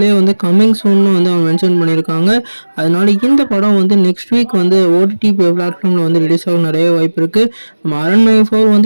வந்து கம்மிங் சூன்னு வந்து அவங்க மென்ஷன் பண்ணியிருக்காங்க. அதனால இந்த படம் வந்து நெக்ஸ்ட் வீக் வந்து ஓடிடி பிளாட்ஃபார்மில் வந்து ரிலீஸ் ஆக நிறைய வாய்ப்பு இருக்குது. நம்ம அரண்மனை 4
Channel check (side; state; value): both; inverted; correlation -1.00